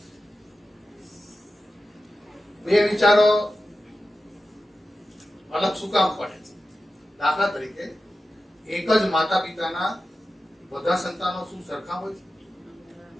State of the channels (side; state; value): both; normal; correlation 0.93